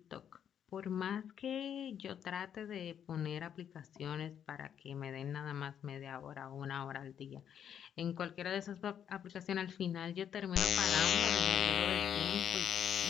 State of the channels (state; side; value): quieter; right; 8.9 dB